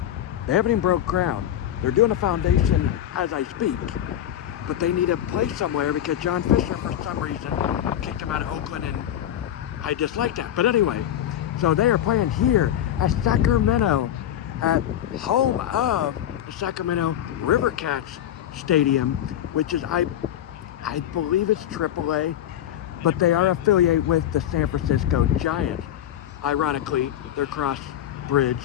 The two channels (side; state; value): right; quieter; 11.2 dB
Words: They haven't even broke ground. They're doing a foundation as I speak. But they need a place somewhere because John Fisher, for some reason, kicked him out of Oakland, and I dislike that. But anyway, so they are playing here at Sacramento, at home of the Sacramento River Cats Stadium, which is, I believe it's AAA, but they are affiliated with the San Francisco Giants. Ironically, their cross-bridge